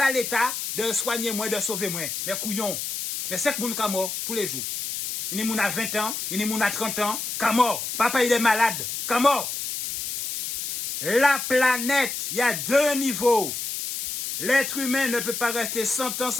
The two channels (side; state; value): left; noise; hiss, 4 dB below the sound